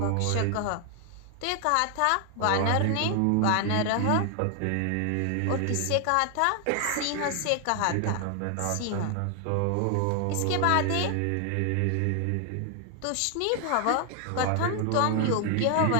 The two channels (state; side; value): different; both; correlation 0.00